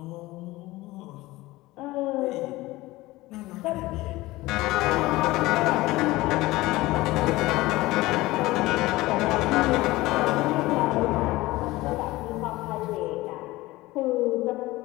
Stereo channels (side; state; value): right; quieter; 19.1 dB